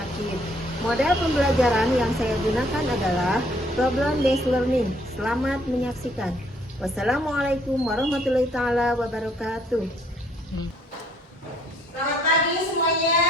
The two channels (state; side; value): normal; both; correlation 0.65